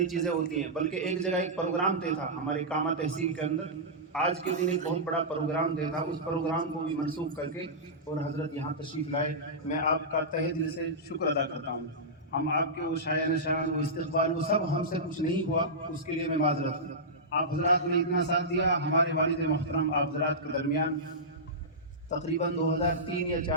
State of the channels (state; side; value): normal; both; correlation -0.14